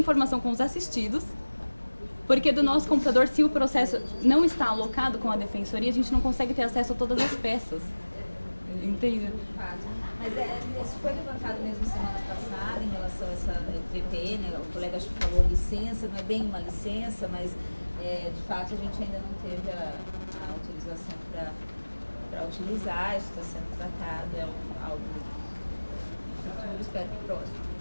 com os assistidos, porque do nosso computador, se o processo não está alocado com a defensoria, a gente não consegue ter acesso a todas as peças. Entende? Mas isso foi levantado mesmo semana passada em relação a essa PP, né? O colega acho que falou licença, não é bem uma licença, mas de fato a gente ainda não teve a autorização para utilizar, isso está sendo tratado, é algo futuro, espero que próximo.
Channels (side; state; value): both; inverted; correlation -1.00